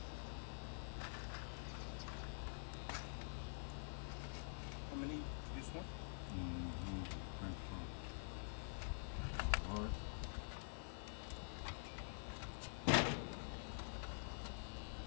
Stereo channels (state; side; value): silent; right; digital silence